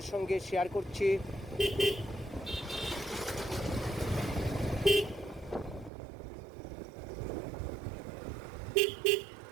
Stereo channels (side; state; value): left; drops out; at 5.9 s